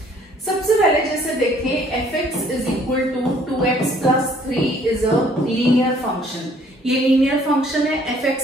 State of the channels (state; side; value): normal; both; correlation 0.60